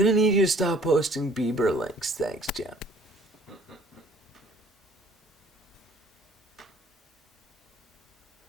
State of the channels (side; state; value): both; normal; correlation 0.55